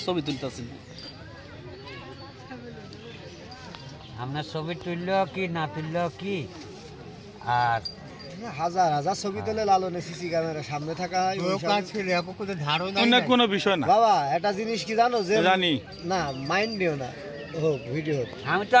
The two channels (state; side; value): identical; both; correlation 1.00